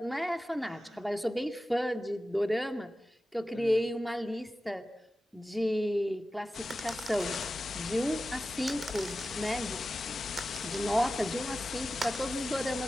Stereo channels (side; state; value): both; normal; correlation 0.94